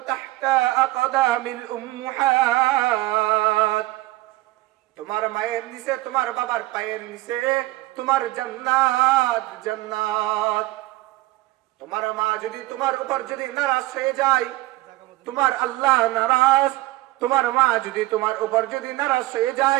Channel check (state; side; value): quieter; left; 18.7 dB